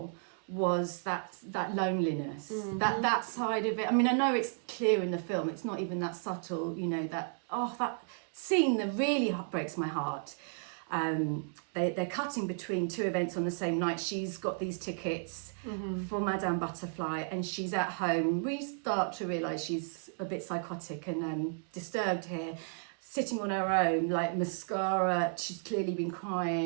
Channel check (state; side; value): silent; left; digital silence